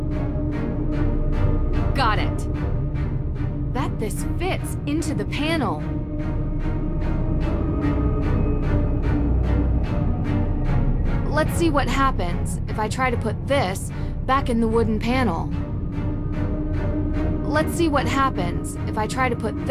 Got it. Bet this fits into the panel. Let's see what happens if I try to put this back in the wooden panel. Let's see what happens if I try to put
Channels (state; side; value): identical; both; correlation 1.00